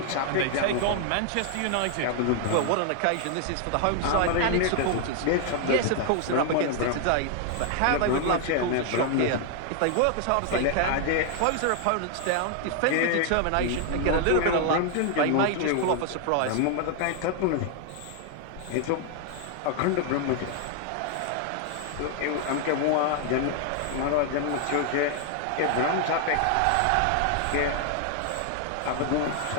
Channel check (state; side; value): different; both; correlation 0.00